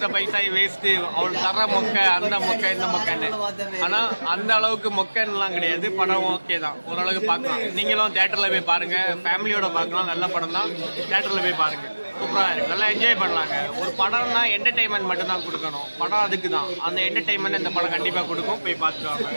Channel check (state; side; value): inverted; both; correlation -1.00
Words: பைசா வேஸ்ட்டு, அவள் தர மொக்கை, அந்த மொக்கை இந்த மொக்கைன்னு. ஆனால் அந்த அளவுக்கு மொக்கன்லாம் கிடையாது. படம் ஓகே தான், ஓரளவுக்கு பார்க்கலாம். நீங்களும் தேட்டரில் போய் பாருங்கள், ஃபேமிலியோட பார்க்கலாம். நல்ல படம் தான், தேட்டரில் போய் பாருங்கள். சூப்பராக இருக்குது, நல்லா என்ஜாய் பண்ணலாங்க. ஒரு படம்னா என்டர்டெயின்மெண்ட் மட்டும்தான் கொடுக்கணும். படம் அதுக்கு தான். அந்த என்டர்டெயின்மெண்ட் இந்த படம் கண்டிப்பாக கொடுக்கும். போய் பார்த்துட்டு